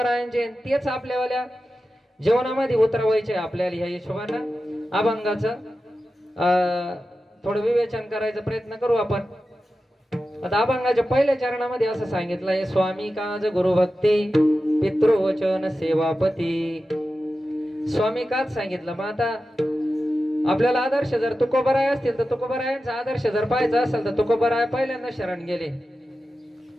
तेच आपल्यावाल्या जीवनामध्ये उतरवायचे आपल्याला ह्या हिशोबानं अभंगाचं थोडं विवेचन करायचा प्रयत्न करू आपण. आता अभंगाच्या पहिल्या चरणामध्ये असं सांगितलंय, स्वामी काज गुरुभक्ती पितृवचन सेवापती. स्वामी काच सांगितलं. मग आता आपल्याला आदर्श जर तुकोबराय असतील तर तुकोबरायांचा आदर्श जर पाहायचा असेल तर तुकोबराय पहिल्यांदा शरण गेले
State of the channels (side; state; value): both; normal; correlation 0.92